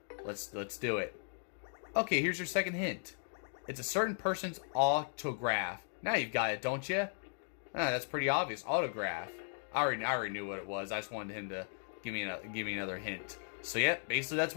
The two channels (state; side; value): silent; right; digital silence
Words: Let's do it. Okay, here's your second hint. It's a certain person's autograph. Now you've got it, don't you? That's pretty obvious. Autograph. I already knew what it was. I just wanted him to give me another hint. So yeah, basically that's